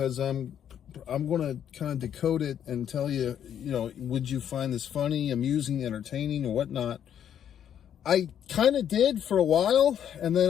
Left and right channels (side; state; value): right; quieter; 9.5 dB